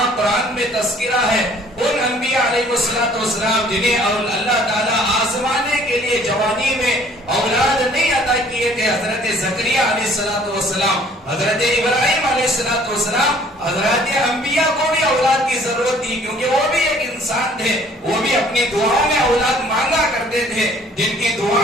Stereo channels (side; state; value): both; normal; correlation 0.56